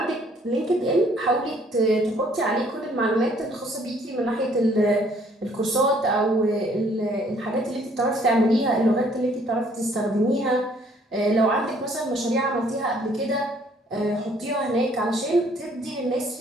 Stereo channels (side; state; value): both; normal; correlation 0.62